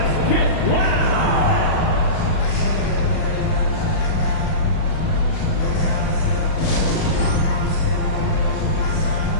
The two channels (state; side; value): late; right; 37 ms